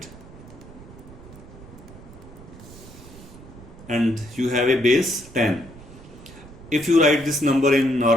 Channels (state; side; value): noise; right; rumble, 18 dB below the sound